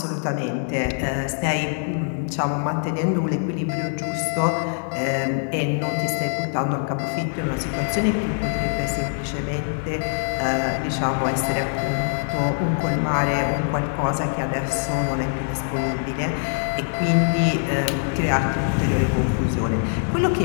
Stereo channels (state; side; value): silent; right; digital silence